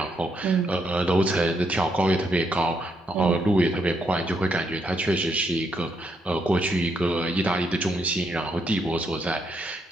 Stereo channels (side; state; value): both; normal; correlation 0.77